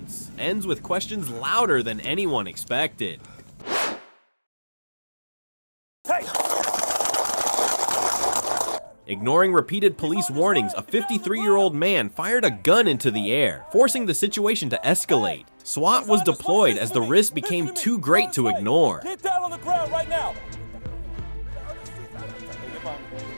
ends with questions louder than anyone expected. Hey! Ignoring repeated police warnings, a 53-year-old man fired a gun into the air, forcing the situation to escalate. SWAT was deployed as the risk became too great to ignore. Get down on the ground right now!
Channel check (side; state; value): both; inverted; correlation -1.00